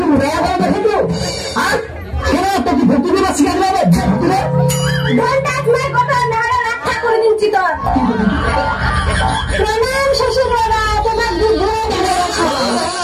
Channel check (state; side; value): identical; both; correlation 1.00